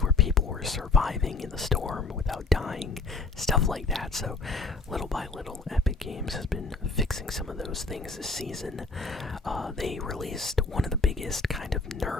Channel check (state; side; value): quieter; right; 3.9 dB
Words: where people were surviving in the storm without dying, stuff like that. So little by little, Epic Games has been fixing some of those things this season. They released one of the biggest kind of